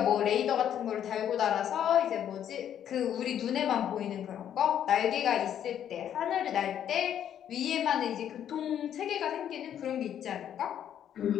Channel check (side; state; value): right; quieter; 9.9 dB